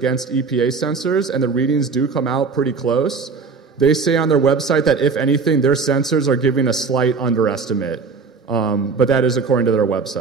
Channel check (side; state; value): left; quieter; 4.9 dB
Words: EPA sensors, and the readings do come out pretty close. They say on their website that, if anything, their sensors are giving a slight underestimate, but that is according to their